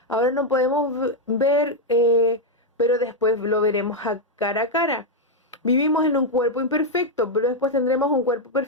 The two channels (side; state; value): both; normal; correlation 0.01